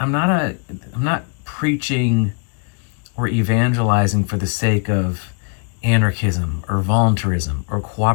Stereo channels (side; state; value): right; quieter; 37.5 dB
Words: preaching or evangelizing for the sake of anarchism or voluntarism or